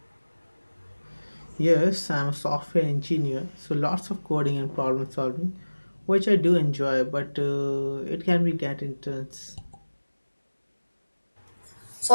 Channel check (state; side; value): inverted; both; correlation -1.00